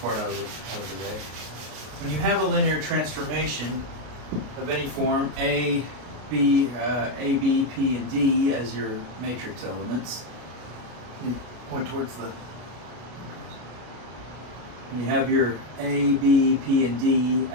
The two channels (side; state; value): left; late; 33 ms